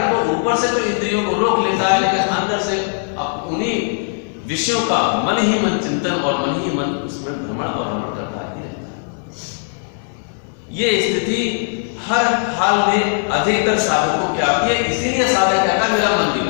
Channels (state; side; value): silent; right; 63 dB below the other